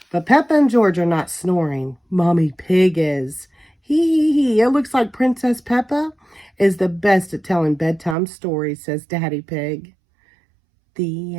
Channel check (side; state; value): left; drops out; at 8.2 s